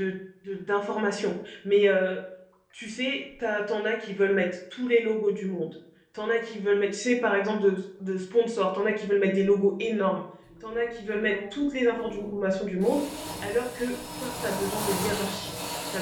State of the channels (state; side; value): identical; both; correlation 1.00